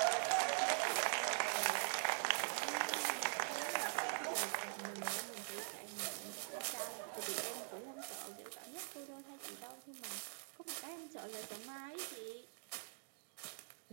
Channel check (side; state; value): left; silent; digital silence